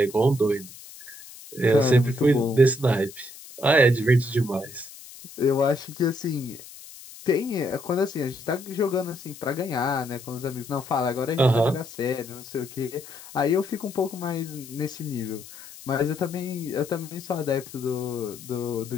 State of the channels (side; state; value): left; noise; hiss, 17 dB below the sound